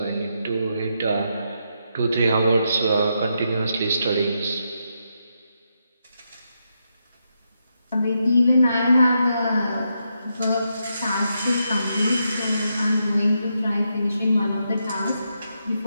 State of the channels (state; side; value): inverted; both; correlation -0.82